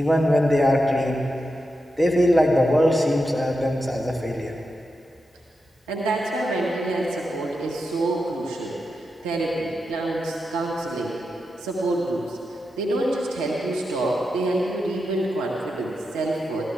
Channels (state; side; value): normal; both; correlation 0.88